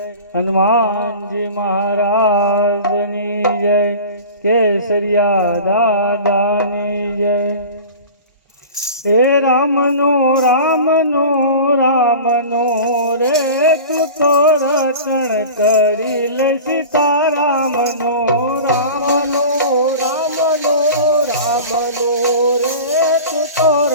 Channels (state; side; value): inverted; both; correlation -0.36